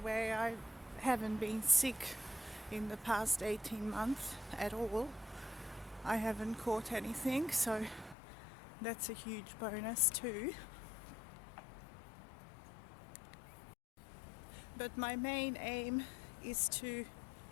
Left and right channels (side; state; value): right; drops out; at 8.2 s